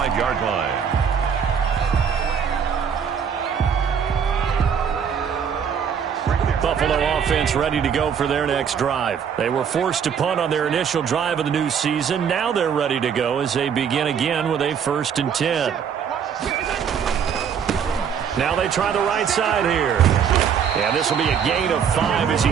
line. Buffalo offense ready to go for their next drive. They were forced to punt on their initial drive of the new season. Now they're ready to go as they begin again with a 1st and 10. Now they try the right side here. And this will be a gain of 5 as he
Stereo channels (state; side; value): quieter; left; 7.5 dB